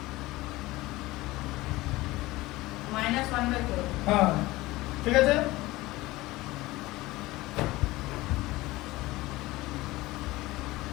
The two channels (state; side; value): quieter; right; 19.3 dB